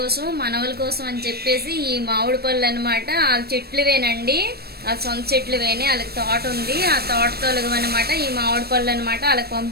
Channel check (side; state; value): left; late; 0.46 ms